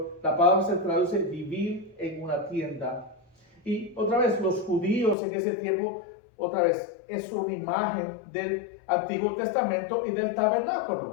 La palabra se traduce vivir en una tienda. Y otra vez, los judíos en ese tiempo, otra vez, es una imagen del Antiguo Testamento y del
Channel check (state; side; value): drops out; right; at 5.2 s